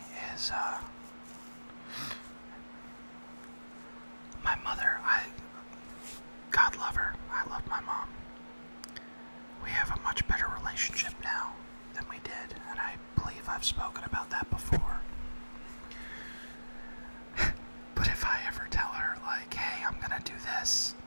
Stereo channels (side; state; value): both; inverted; correlation -1.00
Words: is, my mother, God love her, I love my mom. We have a much better relationship now than we did, and I believe I've spoken about that before. But if I ever tell her, like, hey, I'm gonna do this,